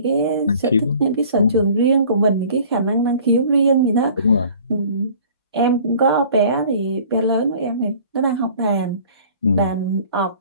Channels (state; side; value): inverted; both; correlation -0.49